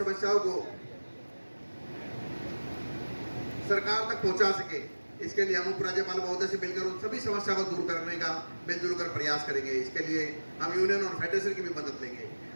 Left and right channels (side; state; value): both; inverted; correlation -1.00